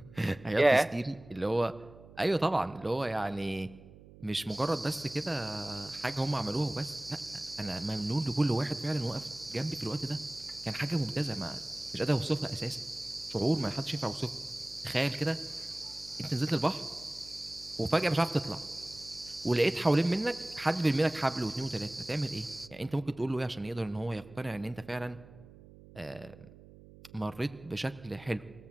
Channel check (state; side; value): noise; right; hum, 20 dB below the sound